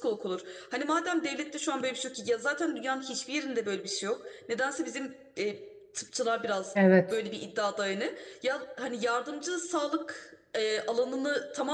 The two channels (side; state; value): both; identical; correlation 1.00